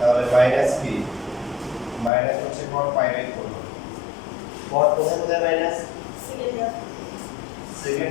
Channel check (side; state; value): right; drops out; at 2.1 s